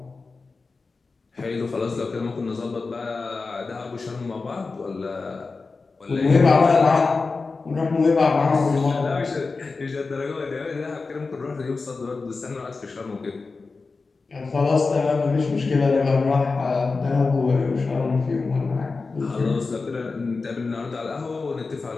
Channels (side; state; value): right; quieter; 4.1 dB